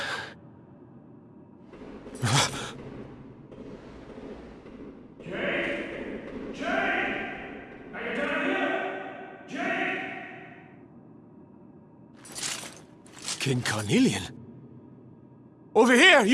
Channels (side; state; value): both; identical; correlation 1.00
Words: King Carnelian? Over here,